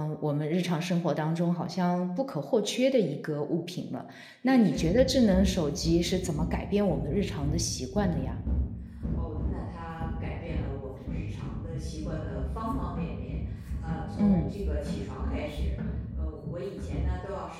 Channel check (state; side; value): identical; both; correlation 1.00